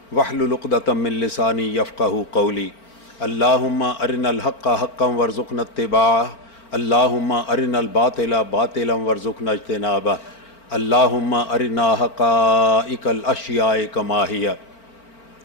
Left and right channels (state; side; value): late; right; 4.4 ms